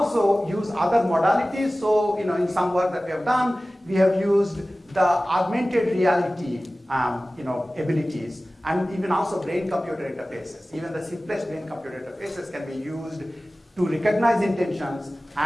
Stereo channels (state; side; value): normal; both; correlation 0.97